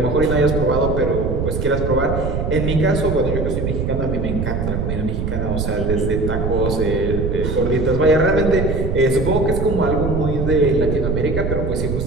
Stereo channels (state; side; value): noise; right; rumble, 1 dB below the sound